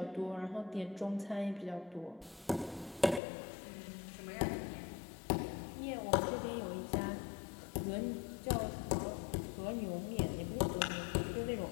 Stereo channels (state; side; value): drops out; right; at 3.2 s